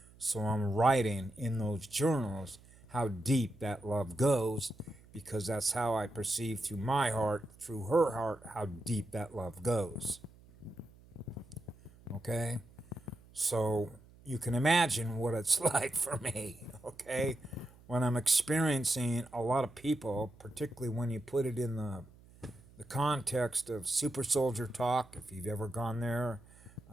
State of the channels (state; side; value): noise; right; hum, 24 dB below the sound